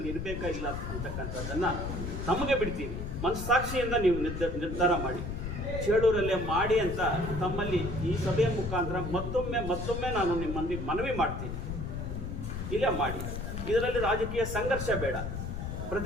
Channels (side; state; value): left; noise; rumble, 5 dB below the sound